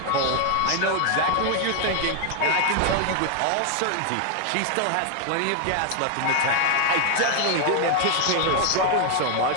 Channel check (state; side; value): different; both; correlation 0.00